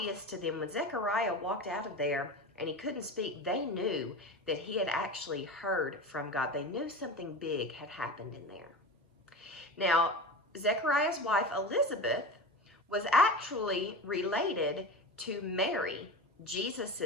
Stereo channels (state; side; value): normal; both; correlation 0.28